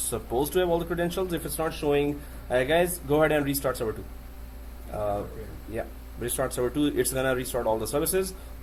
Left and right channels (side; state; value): both; identical; correlation 1.00